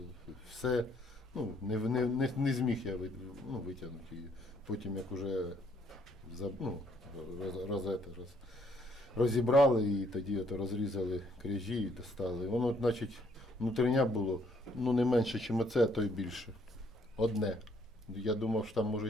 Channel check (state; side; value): normal; both; correlation 0.67